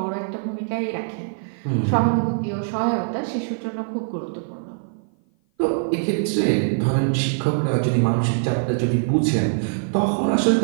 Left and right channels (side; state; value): left; silent; 56 dB below the other